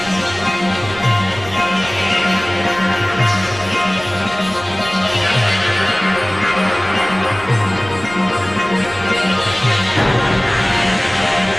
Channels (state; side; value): noise; right; rumble, 18 dB below the sound